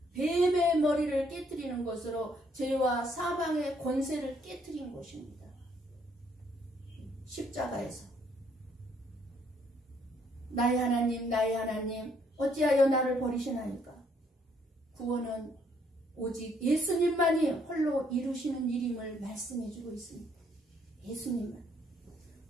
뱀의 머리를 깨뜨리는 것으로 죄와 사망의 권세를 깨뜨린 것입니다. 십자가에서 나의 하나님 어찌하여 나를 버리시나이까. 구원은 오직 예수님만이 홀로 이루시는 일임을 말씀해주고 있습니다. 예수님만.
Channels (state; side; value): normal; both; correlation 0.68